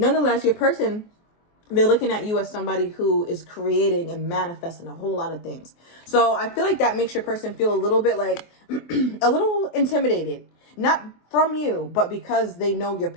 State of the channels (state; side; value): late; right; 24 ms